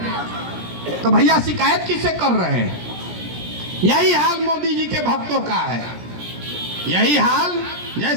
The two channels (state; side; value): late; left; 17 ms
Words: तो भैया शिकायत किससे कर रहे हैं? यही हाल मोदी जी के भक्तों का है। यही हाल